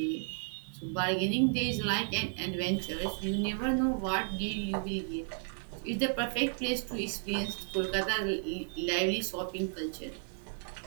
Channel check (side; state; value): left; silent; 56 dB below the other